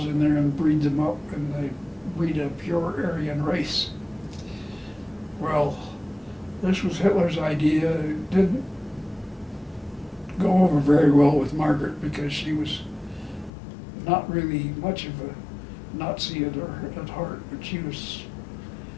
in there and breed them up, and they'd breed a pure Aryan race. Well, this was Hitler's idea. It didn't go over very well with Margaret because she was not really much of a Nazi at heart, but she was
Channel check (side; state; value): right; drops out; at 13.5 s